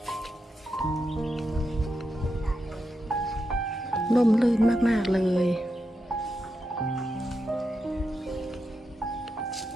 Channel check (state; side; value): normal; both; correlation 0.86